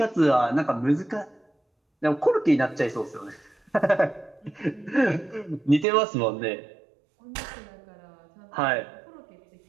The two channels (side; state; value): left; drops out; at 5.9 s